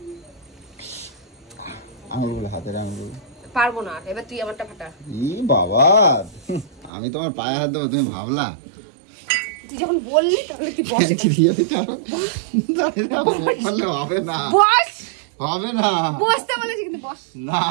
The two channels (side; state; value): left; drops out; at 6.9 s